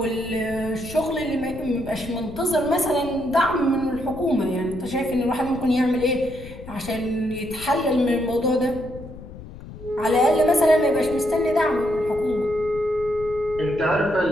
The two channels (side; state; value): left; noise; rumble, 14 dB below the sound